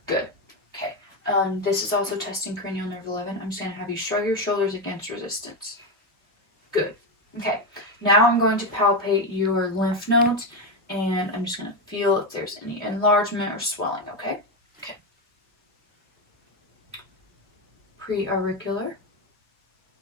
Good. Okay. This is also testing cranial nerve 11. I'm just going to have you shrug your shoulders against resistance. Good. Okay. Now I'm going to palpate your lymph nodes, and I'm just going to feel if there's any enlargement or swelling, okay? Okay. Pre-auricular,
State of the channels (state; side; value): normal; both; correlation 0.11